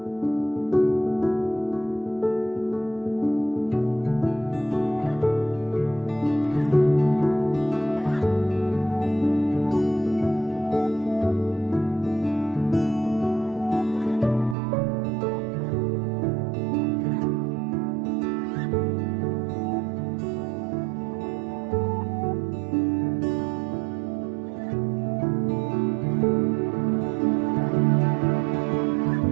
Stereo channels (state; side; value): drops out; left; at 14.6 s